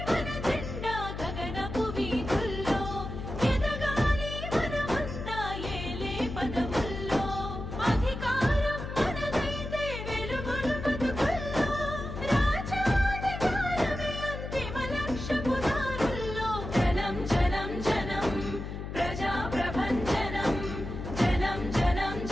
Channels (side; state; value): left; noise; hum, 7 dB below the sound